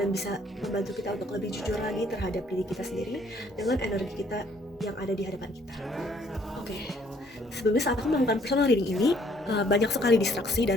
bisa membantu kita untuk lebih jujur lagi terhadap diri kita sendiri dengan energi kita yang ada di hadapan kita. Oke. Sebelumnya saat aku melakukan personal reading ini, banyak sekali distraksi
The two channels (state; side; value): normal; both; correlation 0.64